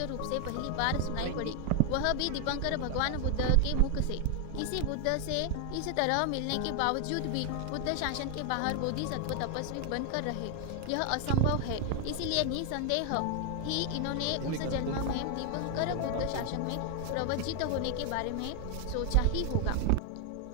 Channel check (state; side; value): different; both; correlation 0.00